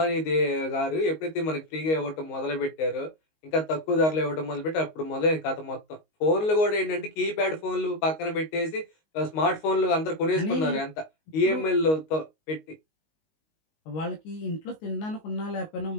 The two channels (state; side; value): late; right; 19 ms